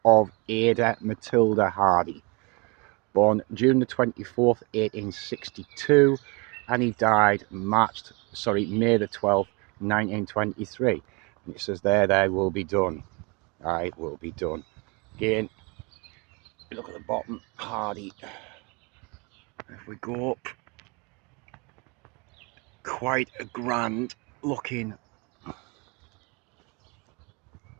of Ada Matilda Hardy, born June the 24th, 1862, and he died May the 12th, 1923. And it says there, "Thy will be done. I will be done." Again, look at the bottom, Hardy. If we go up, quite a grand looking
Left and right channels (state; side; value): quieter; left; 29.7 dB